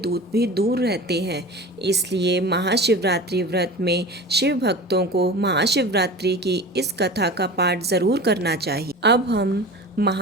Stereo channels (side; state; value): both; normal; correlation 0.34